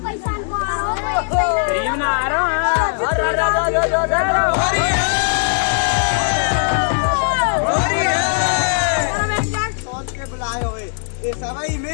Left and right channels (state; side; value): silent; right; 67 dB below the other